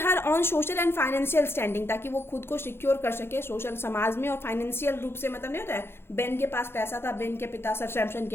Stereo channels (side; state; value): right; late; 0.11 ms